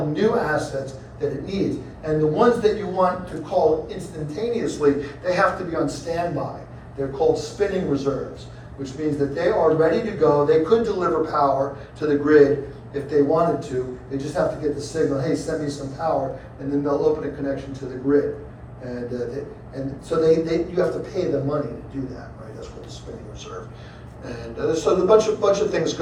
new assets that it needs. And the ones that you want to call instantaneously, they have to be on standby. They're called spinning reserves, which means that they are ready to go. They could deliver power to the grid if they wanted to. They just have to get the signal, hey, send me some power, and then they'll open a connection to the grid. And so you have to pay them money to do that, right? That's called the spinning reserve. And so there's a bunch of things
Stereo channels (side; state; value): both; identical; correlation 1.00